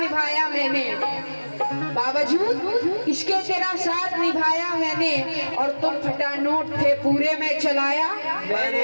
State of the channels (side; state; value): both; inverted; correlation -1.00